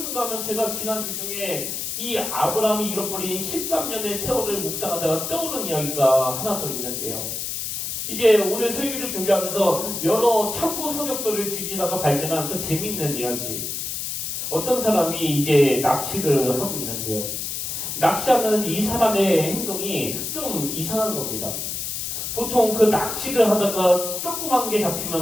하면 제가 지난 주 중에 이 아브라함이 잃어버린 13년의 세월을 묵상하다가 떠오른 이야기가 하나 더 있는데요. 이제 오늘 설교를 준비하면서 여러 참고 서적들을 뒤지다가 발견한 그 재미있는 이야기. 어떤 사람이 이제 낚시를 하고 있는데요. 낚시하는 이 사람의 행동이 좀 이상한 겁니다. 보통 그 낚시를 하다가 조그만 게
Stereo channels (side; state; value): left; noise; hiss, 4 dB below the sound